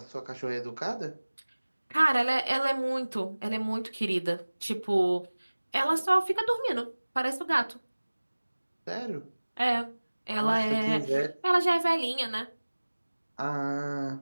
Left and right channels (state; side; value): inverted; both; correlation -1.00